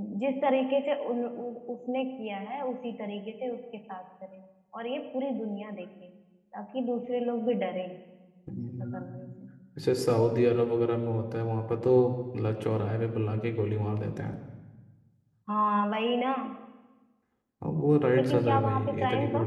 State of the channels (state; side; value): identical; both; correlation 1.00